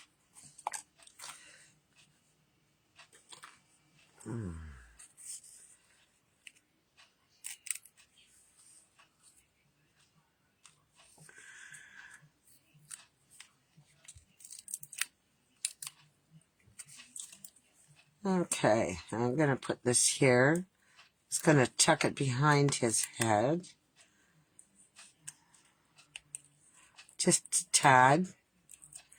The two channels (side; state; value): both; identical; correlation 1.00